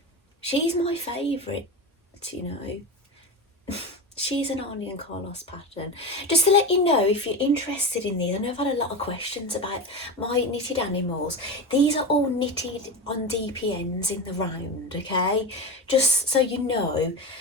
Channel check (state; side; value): normal; both; correlation 0.22